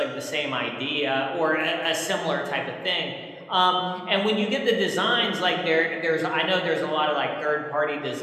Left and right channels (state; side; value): identical; both; correlation 1.00